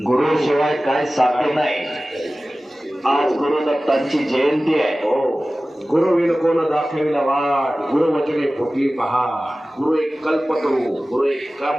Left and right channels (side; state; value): both; normal; correlation 0.97